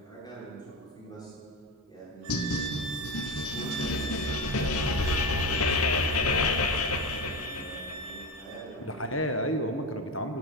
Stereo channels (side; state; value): both; normal; correlation 0.20